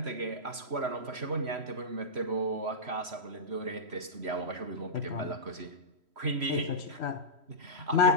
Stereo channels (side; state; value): left; late; 3.0 ms